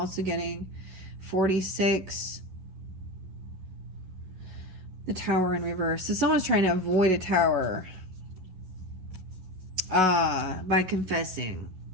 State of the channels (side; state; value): left; late; 11 ms